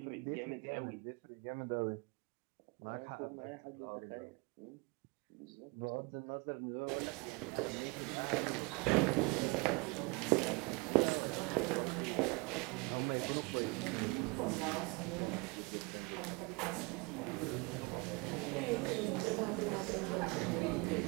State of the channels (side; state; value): left; quieter; 28.0 dB